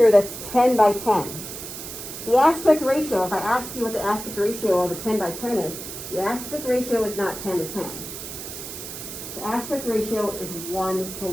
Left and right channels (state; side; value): noise; right; hiss, 9 dB below the sound